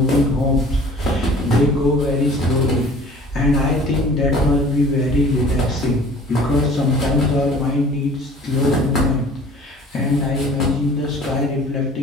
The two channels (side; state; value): both; normal; correlation 0.48